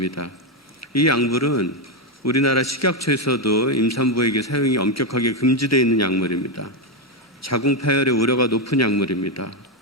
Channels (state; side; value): normal; both; correlation 0.06